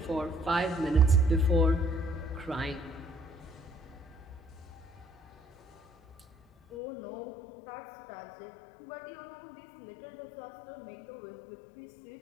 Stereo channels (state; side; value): drops out; right; at 6.8 s